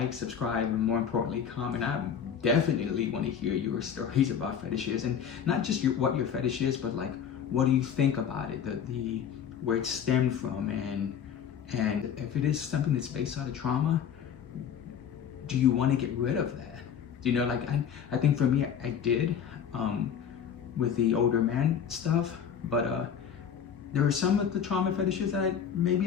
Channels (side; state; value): right; quieter; 8.0 dB